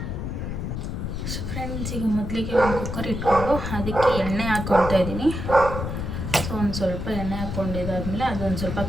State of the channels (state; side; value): noise; left; rumble, 4 dB below the sound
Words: ಸೊ ಫ್ರೆಂಡ್ಸ್, ಈಗ ಮೊದಲಿಗೆ ಒಂದು ಕುಕ್ಕರ್ ಇಟ್ಕೊಂಡು ಅದಕ್ಕೆ ಎಣ್ಣೆ ಹಾಕ್ಕೊಳ್ತಾ ಇದ್ದೀನಿ. ಸೊ ಒಂದು ಸ್ವಲ್ಪ ಎಣ್ಣೆ ಹಾಕ್ಕೊಂಡಿದ್ದಾದಮೇಲೆ ಅದೊಂದು ಸ್ವಲ್ಪ